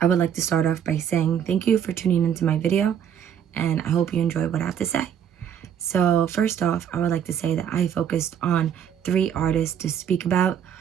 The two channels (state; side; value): quieter; left; 8.8 dB